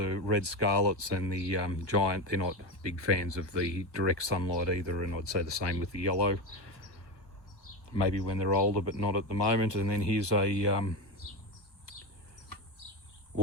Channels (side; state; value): right; late; 1.3 ms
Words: red scarlets and the giant, they're not big fans of the direct sunlight either, and I'd say the same with the yellow. Maybe when they're older, but not at the moment. And then here's a